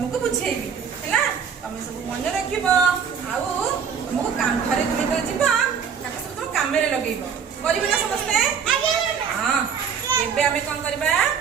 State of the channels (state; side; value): quieter; left; 6.9 dB